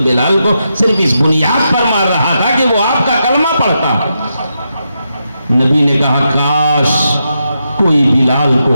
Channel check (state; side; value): inverted; both; correlation -0.85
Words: بلال کو صرف اس بنیاد پر مار رہا تھا کہ وہ آپ کا کلمہ پڑھتا ہے۔ نبی نے کہا کاش کوئی بلال کو